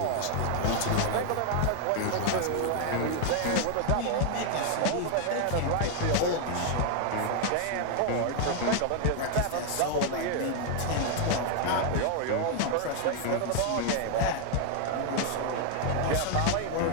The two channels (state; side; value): different; both; correlation 0.00